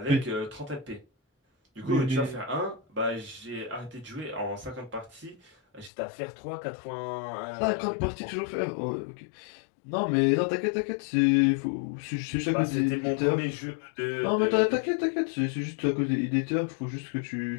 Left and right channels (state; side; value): drops out; right; at 5.9 s